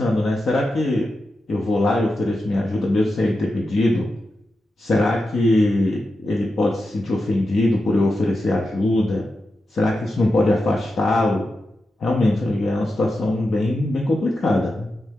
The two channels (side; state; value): both; normal; correlation 0.89